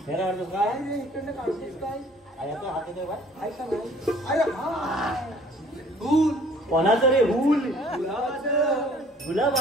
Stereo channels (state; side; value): normal; both; correlation 0.55